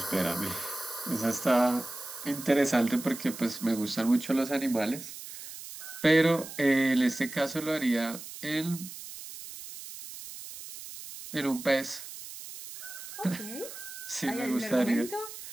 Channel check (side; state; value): right; noise; hiss, 12 dB below the sound